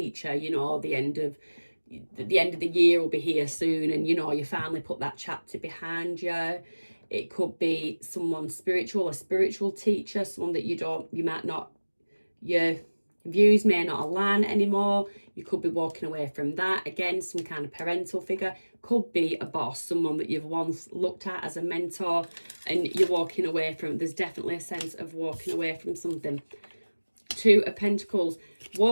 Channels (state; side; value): inverted; both; correlation -1.00